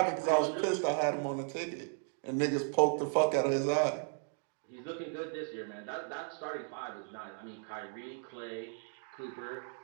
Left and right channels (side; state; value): left; silent; 54 dB below the other